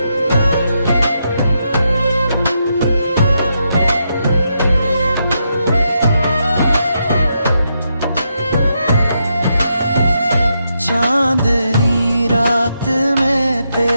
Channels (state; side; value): inverted; both; correlation -0.82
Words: चांदनी रात में